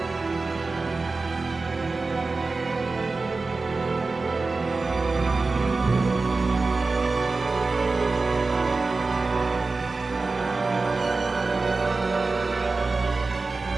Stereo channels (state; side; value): quieter; left; 3.8 dB